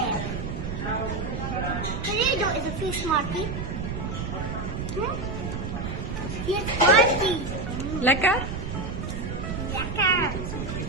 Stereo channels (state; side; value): noise; right; rumble, 5 dB below the sound